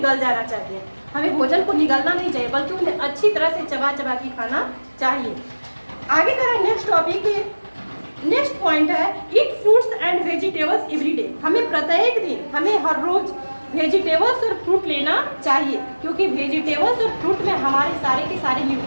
जाना चाहिए। हमें भोजन को निगलना नहीं चाहिए बल्कि उन्हें अच्छी तरह से चबा चबा के खाना चाहिए। आगे कह रहा है नेक्स्ट टॉपिक, नेक्स्ट पॉइंट है ईट fruits and vegetables every day. हमें प्रत्येक दिन, हमें हर रोज वेजिटेबल्स और फ्रूट लेना चाहिए, क्योंकि वेजिटेबल्स और फ्रूट में हमारे सारे के सारे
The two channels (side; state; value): both; inverted; correlation -1.00